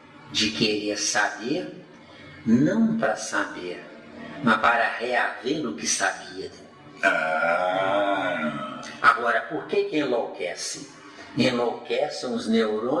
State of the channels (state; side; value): identical; both; correlation 1.00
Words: de querer saber, não para saber, mas para reaver o que sabia. Agora, por que enlouquece? Enlouquecem os